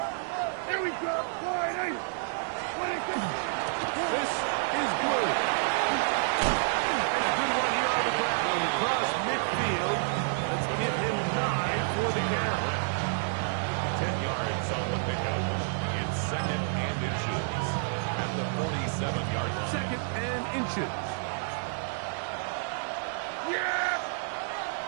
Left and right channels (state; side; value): silent; left; 58 dB below the other